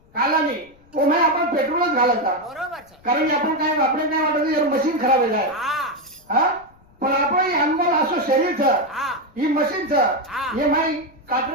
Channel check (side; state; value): left; noise; rumble, 29 dB below the sound